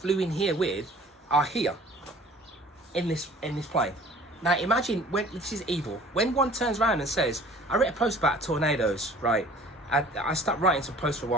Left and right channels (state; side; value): normal; both; correlation 0.49